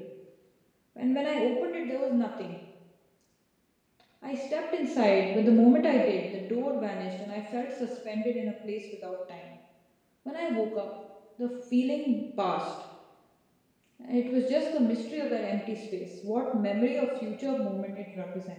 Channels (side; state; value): both; identical; correlation 1.00